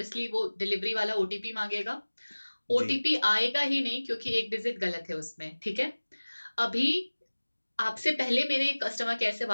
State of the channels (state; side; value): inverted; both; correlation -1.00